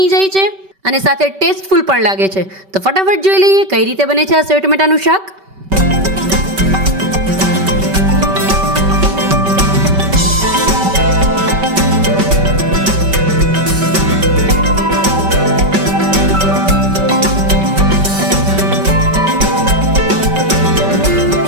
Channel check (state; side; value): late; left; 5.2 ms